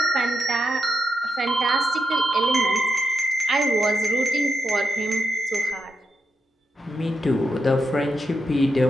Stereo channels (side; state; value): both; normal; correlation 0.84